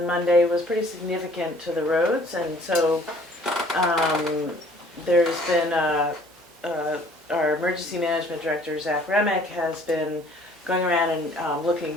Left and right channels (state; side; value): normal; both; correlation 0.56